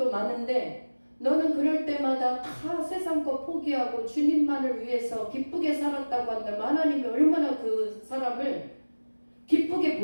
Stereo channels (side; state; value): both; inverted; correlation -1.00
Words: 많은데 너는 그럴 때마다 다 세상 거 포기하고 주님만을 위해서 기쁘게 살았다고 한다면 하나님이 얼마나 그 사람을 기쁘게